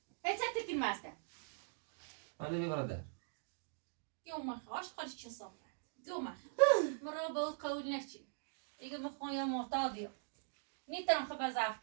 هیچ تکن ماسته ولی بیا برادر يوم خاش خارج چه صافه يوم مرا بود قول نشی دیگه مخوام یا معتادیم نیترم خب ضعف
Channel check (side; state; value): left; silent; digital silence